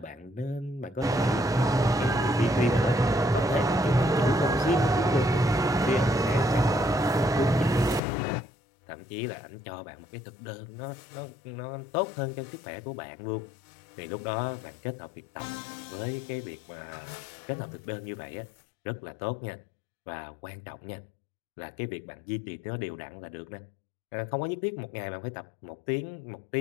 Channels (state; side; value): drops out; right; at 8.0 s